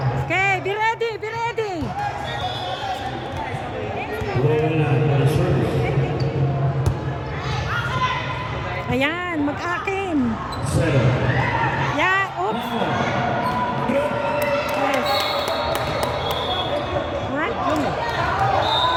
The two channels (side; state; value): both; identical; correlation 1.00